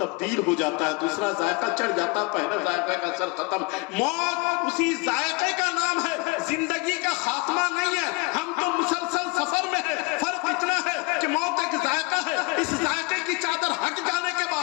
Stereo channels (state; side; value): quieter; right; 26.9 dB